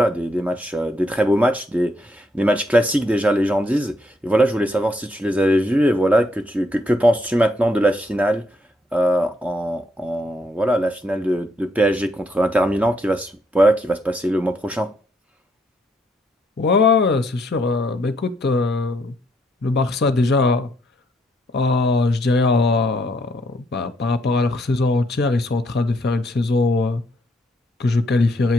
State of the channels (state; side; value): normal; both; correlation 0.73